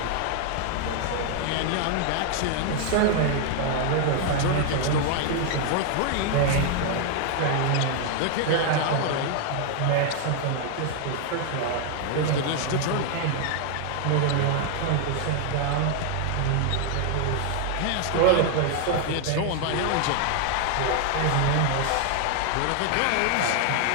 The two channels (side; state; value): both; different; correlation 0.00